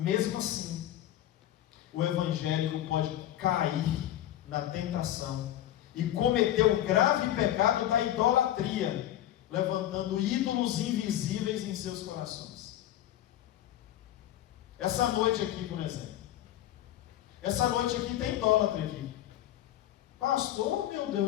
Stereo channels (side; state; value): right; quieter; 12.9 dB